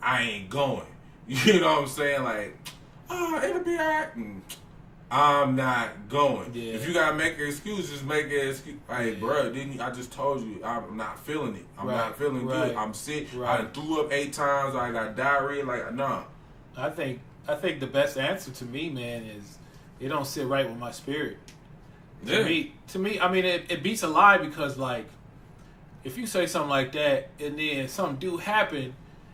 ain't going. You know what I'm saying? Like, it'll be alright. I'm not going. Yeah. If you gotta make an excuse, just make an excuse. Like, bro, I just told you I'm not feeling it. I'm not feeling good. I'm sick. I done threw up 8 times. I got diarrhea. Like, nah. I think the best answer to me, man, is it don't sit right with my spirit. To me, I mean, it beats a lie, because like, if you say something like that and then something do happen,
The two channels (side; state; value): both; identical; correlation 1.00